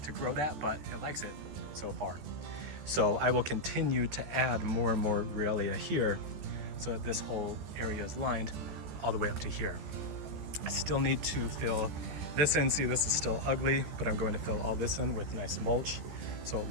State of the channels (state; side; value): late; left; 14 ms